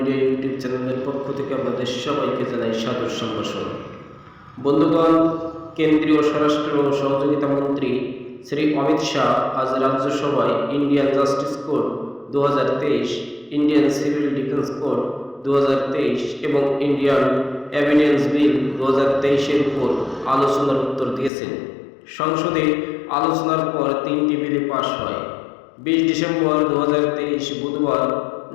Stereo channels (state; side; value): drops out; right; at 21.3 s